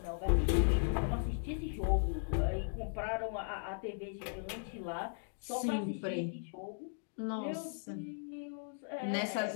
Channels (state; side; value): silent; right; digital silence